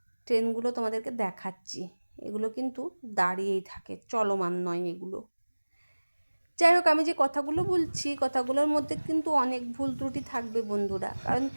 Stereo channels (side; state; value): both; inverted; correlation -1.00